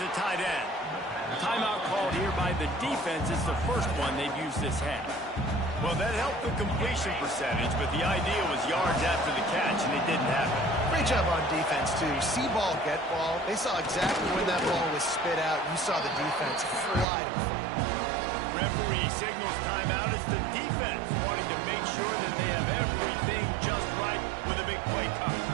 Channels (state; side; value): drops out; left; at 17.1 s